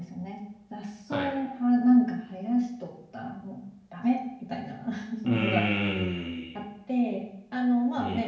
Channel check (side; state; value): both; identical; correlation 1.00